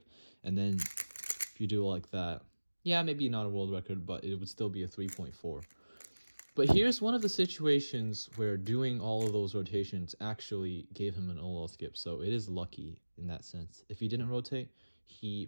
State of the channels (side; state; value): both; inverted; correlation -1.00